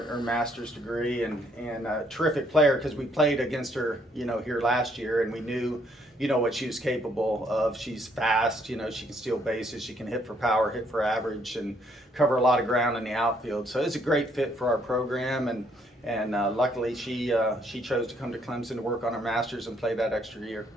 master's degree, and a terrific player, because we played against her, you know, here last year, and we knew, you know, what she was capable of. She's fast, you know, she can steal bases, she can hit for power, hit for average, and cover a lot of ground in the outfield. So it's a great fit for our program, and luckily she chose to come to Clemson to work on her master's and play that extra year.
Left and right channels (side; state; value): both; normal; correlation 0.68